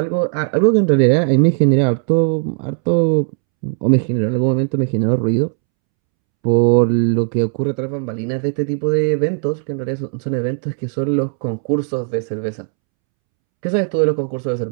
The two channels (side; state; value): left; silent; 68 dB below the other